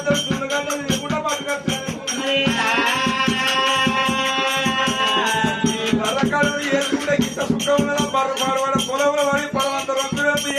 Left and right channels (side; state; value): both; identical; correlation 1.00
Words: 2 గంటలు తిరుగుకుంటా పట్టుకొస్తాను ఈ బర్రకాడు వేసుకుంటే ఇంత సుఖం ఉన్నదా బర్ర పాడవాడ పొలంలో పడి పొలవంత రొంతులు